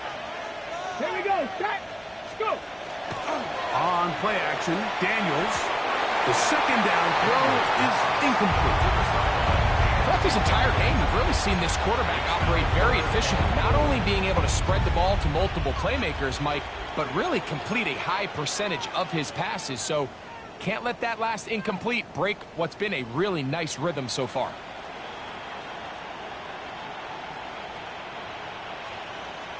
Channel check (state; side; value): identical; both; correlation 1.00